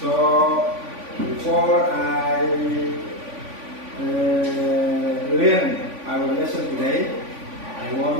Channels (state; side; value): late; left; 3.5 ms